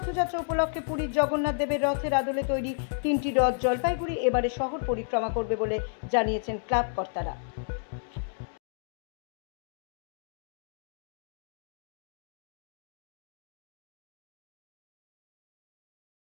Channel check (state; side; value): silent; right; digital silence